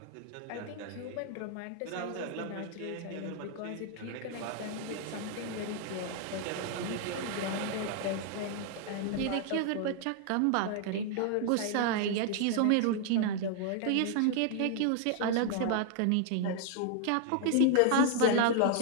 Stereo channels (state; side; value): different; both; correlation 0.00